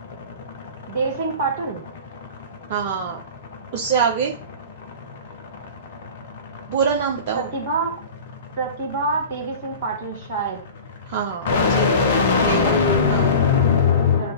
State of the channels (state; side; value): inverted; both; correlation -0.35